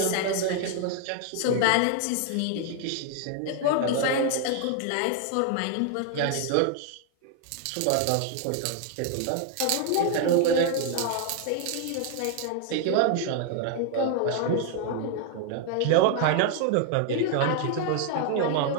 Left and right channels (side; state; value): both; different; correlation 0.00